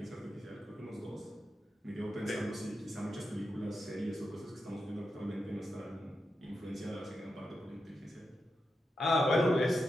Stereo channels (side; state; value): both; normal; correlation 0.87